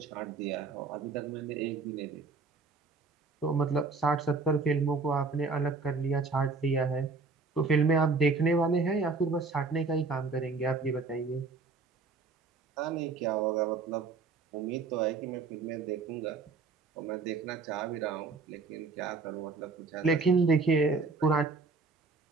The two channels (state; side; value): quieter; left; 4.2 dB